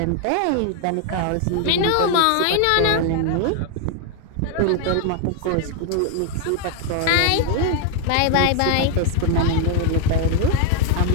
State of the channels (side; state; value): both; different; correlation 0.01